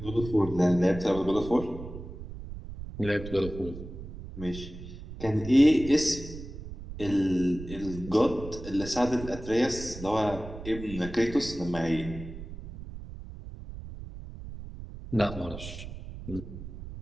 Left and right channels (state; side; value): noise; right; rumble, 12 dB below the sound